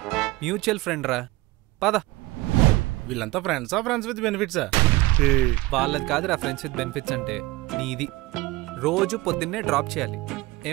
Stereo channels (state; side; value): quieter; left; 20.8 dB